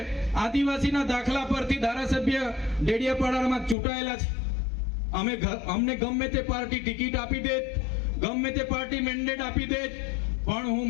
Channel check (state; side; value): drops out; right; at 3.8 s